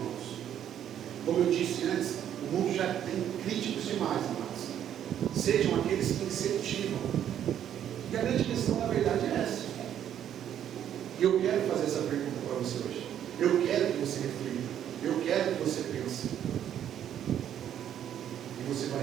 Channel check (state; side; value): quieter; left; 10.1 dB